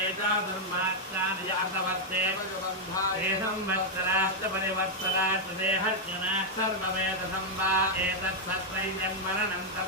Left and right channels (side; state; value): both; normal; correlation -0.02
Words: चातुर्मासानि यातवर्ते ते संवत्सराश्च परिवत्सराश्च ते हर्जनाः सर्ववेदसं वा एतत्सत्त्वं जन्मरणं